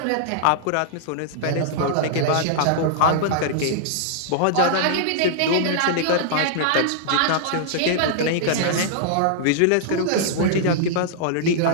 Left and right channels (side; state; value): both; different; correlation -0.01